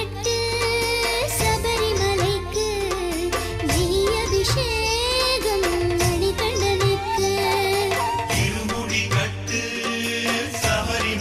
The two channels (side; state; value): both; identical; correlation 1.00